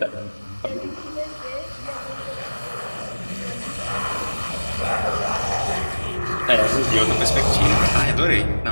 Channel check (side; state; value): both; inverted; correlation -1.00